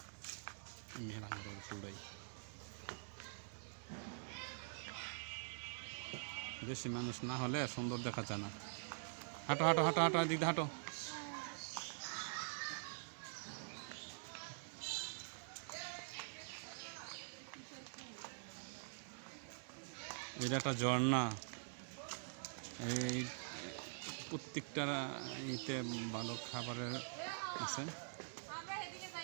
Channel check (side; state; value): left; silent; digital silence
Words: বেশি মানুষ না হলে সুন্দর দেখা যায় না। হাঁটো হাঁটো হাঁটো হাঁটো দিদি হাঁটো। এটা একটা ঝর্ণা, এই প্রত্যেকটা ইতে ভালো খাবারের আছে।